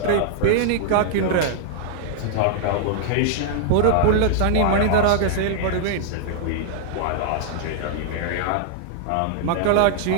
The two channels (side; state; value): both; different; correlation -0.01